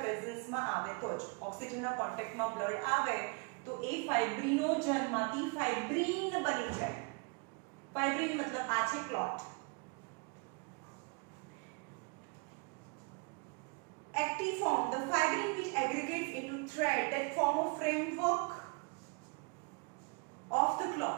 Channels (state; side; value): quieter; left; 32.9 dB